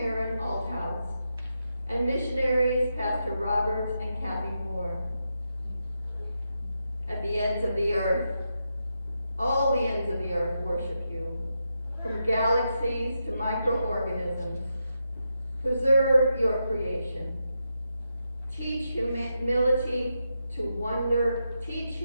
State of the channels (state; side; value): inverted; both; correlation -0.85